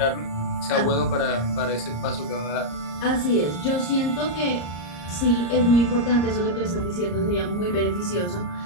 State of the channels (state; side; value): late; right; 34 ms